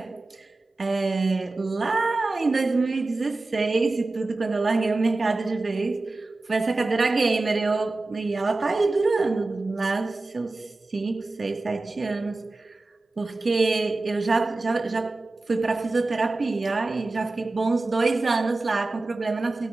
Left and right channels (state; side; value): quieter; left; 3.2 dB